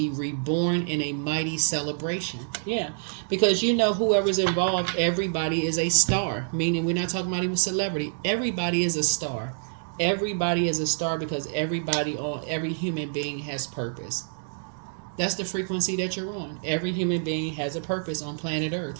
reborn in a mighty celebration. Yeah, because whoever's involved, everybody is a star. Meaning we're not talking about even celebrity. Everybody is a star. Everybody is a star because every human being has purpose. That's the frequency that you're on. Every human being has a purpose on planet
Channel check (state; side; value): silent; left; digital silence